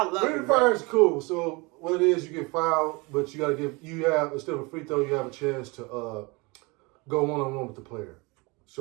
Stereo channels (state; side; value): quieter; left; 26.6 dB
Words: Bring the Fire is cool. So what it is, you get fouled, but you got to instead of a free throw, you have a chance to go one-on-one with the player.